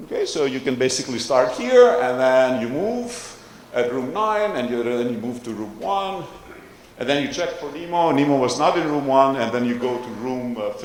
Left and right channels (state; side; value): identical; both; correlation 1.00